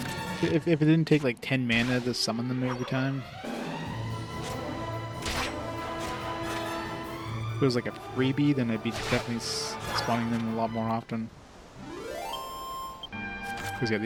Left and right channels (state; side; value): identical; both; correlation 1.00